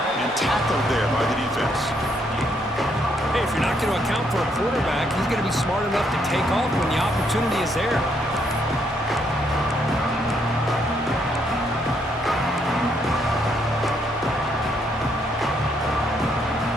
And tackled there by the defense. Hey, if you're not going to account for a quarterback, he's going to be smart enough to take off when the opportunity is there.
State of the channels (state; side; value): normal; both; correlation 0.73